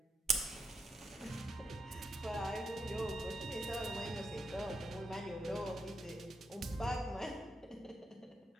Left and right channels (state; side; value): normal; both; correlation 0.83